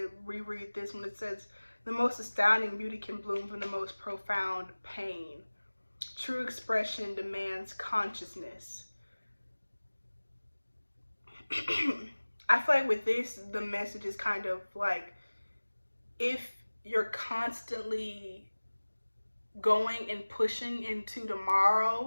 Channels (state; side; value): inverted; both; correlation -1.00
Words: reread this when it says, the most astounding beauty can bloom from the most profound pain. True expression demands consciousness. I feel like with this, the message is kind of like, if you're constantly going and pushing into